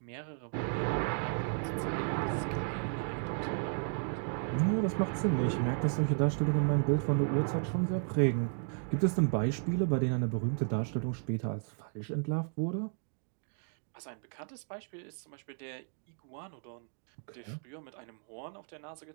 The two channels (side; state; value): left; silent; 55 dB below the other